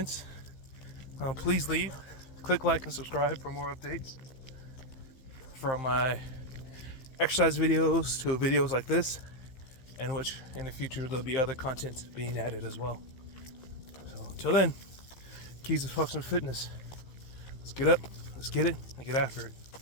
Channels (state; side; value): late; right; 15 ms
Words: please leave. Click like and subscribe for more updates from my exercise videos to videos like this, and which in the future there'll be other content being added as well. So until then, keys to functional fitness. Let's get up, let's get it, and get after it.